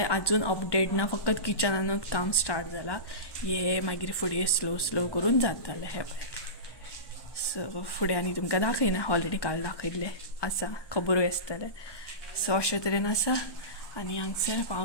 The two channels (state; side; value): late; right; 1.2 ms